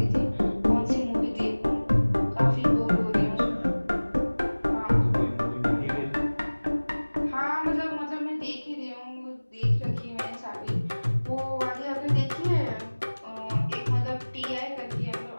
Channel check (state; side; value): inverted; both; correlation -1.00